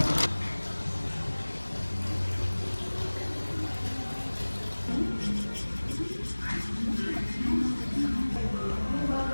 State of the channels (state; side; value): inverted; both; correlation -1.00